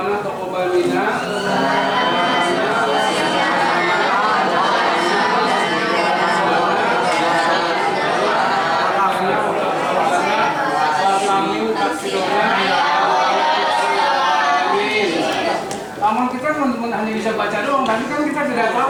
taqabbal minna. Amal kita kan hanya bisa baca doang, tapi kan kita tidak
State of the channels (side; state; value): both; identical; correlation 1.00